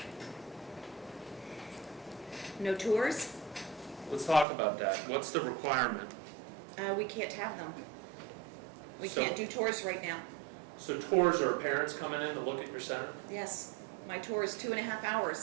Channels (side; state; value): left; drops out; at 4.5 s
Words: No tours? Let's talk about that. What's the requirement? We can't have them. We So- can't do tours right now. So tours are parents coming in to look at your center? Yes, my tour is 2.5